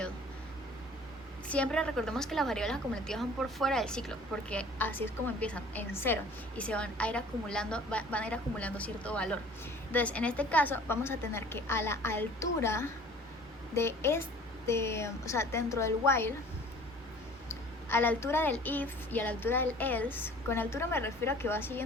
Siempre recordemos que las variables acumulativas van por fuera del ciclo, porque así es como empiezan, en 0, y se van a ir acumulando cierto valor. Entonces, en este caso, vamos a tener que a la altura de o sea, dentro del while, a la altura del if y a la altura del else, con altura me refiero a que va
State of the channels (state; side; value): normal; both; correlation 0.49